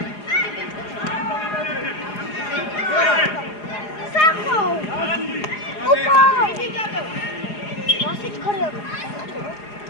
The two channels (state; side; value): late; right; 4.8 ms